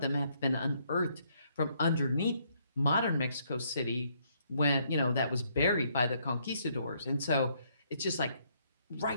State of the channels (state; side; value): inverted; both; correlation -0.70